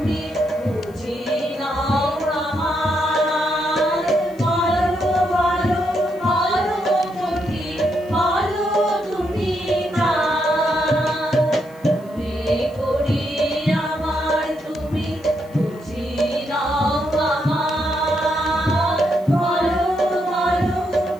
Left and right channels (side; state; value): left; noise; hiss, 28 dB below the sound